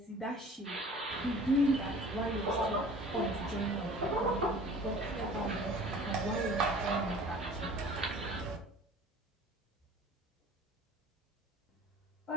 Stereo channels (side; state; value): both; normal; correlation 0.46